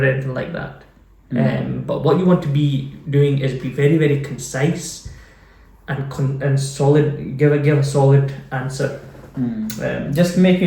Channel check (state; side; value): identical; both; correlation 1.00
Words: anything like that. But what you want to be doing is be very, very concise and solid. Give a solid answer. Just make